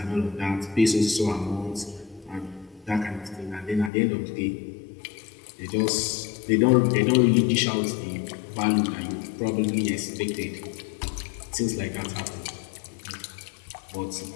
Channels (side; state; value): right; drops out; at 3.9 s